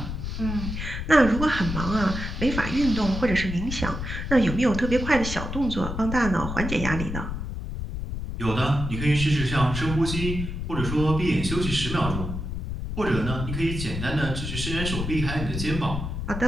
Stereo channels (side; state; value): left; noise; rumble, 5 dB below the sound